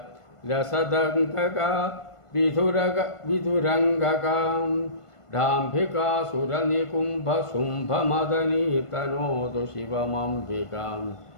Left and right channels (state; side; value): late; right; 1.5 ms